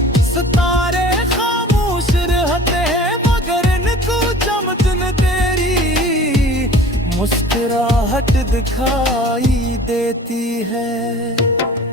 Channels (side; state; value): both; normal; correlation 0.45